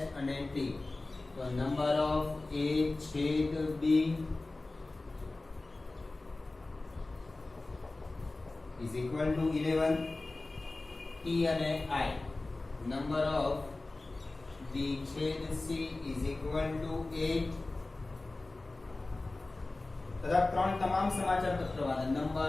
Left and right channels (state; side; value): quieter; right; 3.1 dB